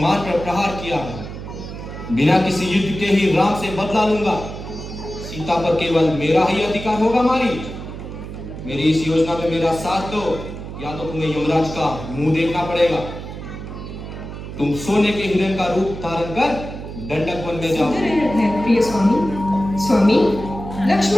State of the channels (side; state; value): right; noise; hum, 10 dB below the sound